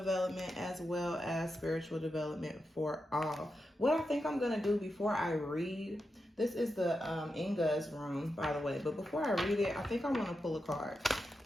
as well as spiritual development for all. What I think I'm going to do before I read, this is the Inga's rune, by the way. But before I read it, I think I want to pull a card.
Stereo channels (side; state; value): both; normal; correlation 0.88